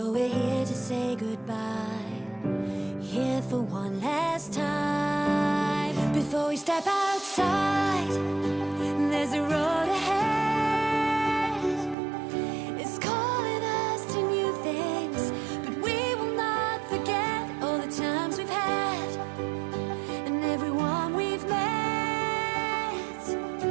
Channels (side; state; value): left; drops out; at 12.0 s